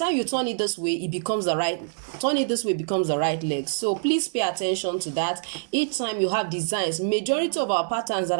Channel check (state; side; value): silent; left; digital silence